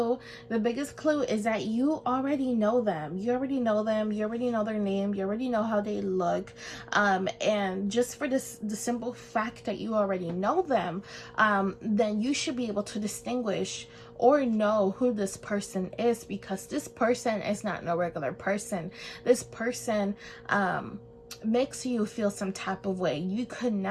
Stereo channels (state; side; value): identical; both; correlation 1.00